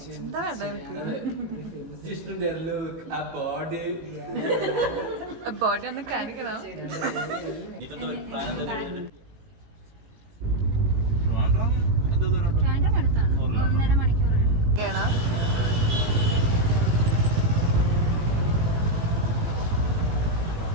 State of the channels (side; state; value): left; late; 18 ms